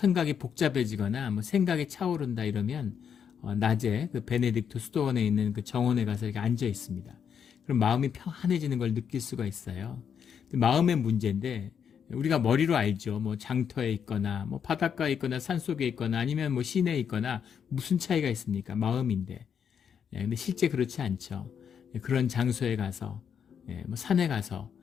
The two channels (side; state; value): right; quieter; 7.6 dB